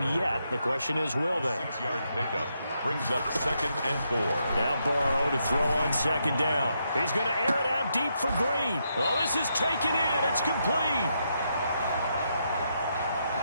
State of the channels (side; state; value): both; inverted; correlation -0.80